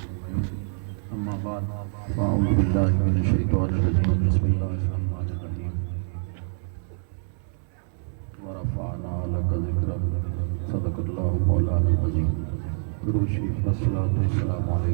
أجمعين أما بعد فأعوذ بالله من الشيطان الرجيم بسم الله الرحمن الرحيم ورفعنا لك ذكرك صدق الله مولانا العظيم درود شریف والصلاة والسلام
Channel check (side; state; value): left; silent; 61 dB below the other